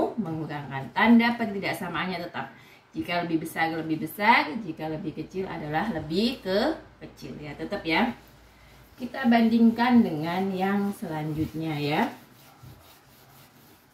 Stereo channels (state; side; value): identical; both; correlation 1.00